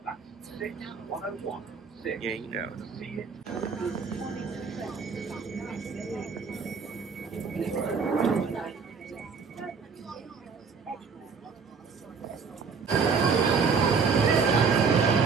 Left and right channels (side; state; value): left; quieter; 5.4 dB